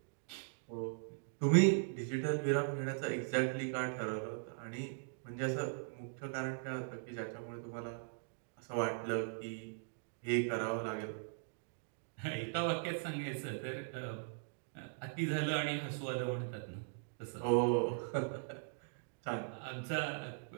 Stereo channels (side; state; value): left; silent; digital silence